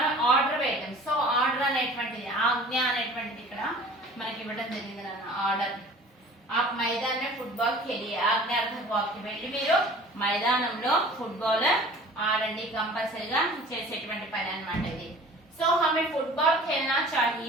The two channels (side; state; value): both; normal; correlation 0.45